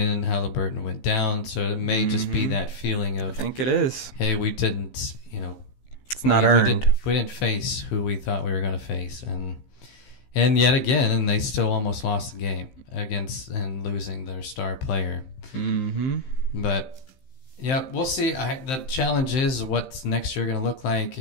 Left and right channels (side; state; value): right; late; 15 ms